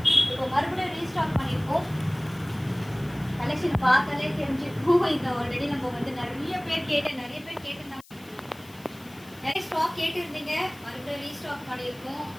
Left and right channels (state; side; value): noise; left; hiss, 24 dB below the sound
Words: இப்போ மறுபடியும் ரீஸ்டாக் பண்ணியிருக்கோம். கலெக்ஷன் பார்த்தாலே தெரிஞ்சிருக்கும். இது ஆல்ரெடி நம்ம நிறைய பேர் கேட்டிருந்தாங்க. நிறைய ஸ்டாக் கேட்டிருந்தீங்க, மறுபடியும் ரீஸ்டாக் பண்ணியிருக்கோம்.